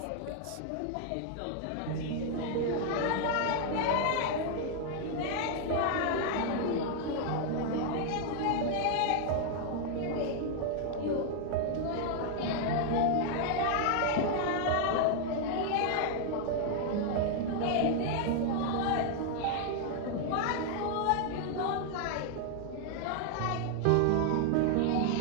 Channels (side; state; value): both; different; correlation 0.00